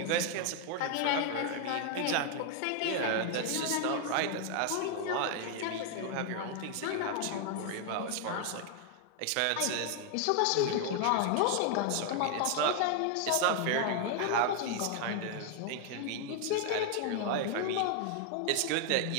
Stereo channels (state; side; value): different; both; correlation 0.00